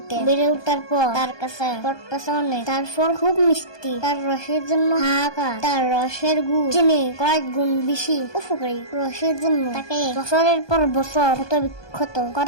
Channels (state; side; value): late; right; 1.2 ms